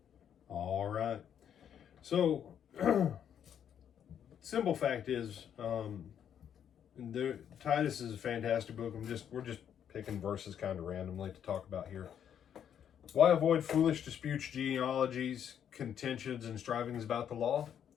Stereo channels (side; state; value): right; quieter; 9.0 dB